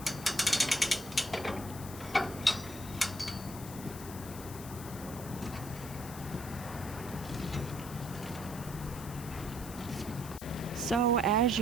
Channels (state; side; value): noise; left; hiss, 13 dB below the sound